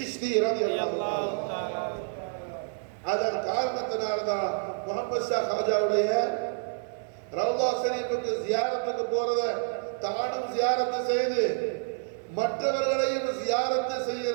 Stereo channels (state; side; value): silent; left; digital silence